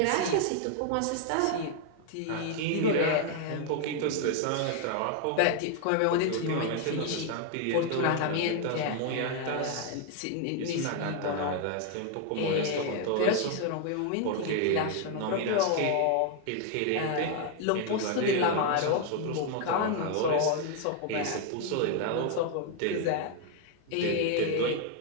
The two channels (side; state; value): both; different; correlation 0.00